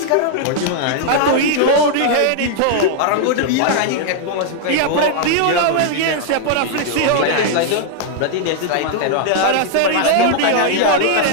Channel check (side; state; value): both; different; correlation 0.00